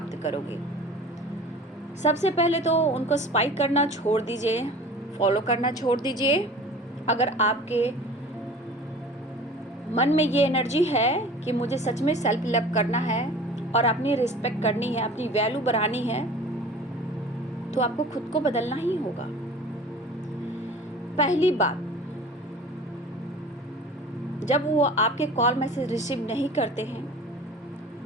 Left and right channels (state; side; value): normal; both; correlation 0.42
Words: करोगे। सबसे पहले तो उनको स्पाइक करना छोड़ दीजिए, फॉलो करना छोड़ दीजिए। अगर आपके मन में ये एनर्जी है कि मुझे सच में सेल्फ लव करना है और अपनी रिस्पेक्ट करनी है, अपनी वैल्यू बढ़ानी है, तो आपको खुद को बदलना ही होगा। पहली बात, जब वो आपके कॉल मैसेज रिसीव नहीं करते हैं,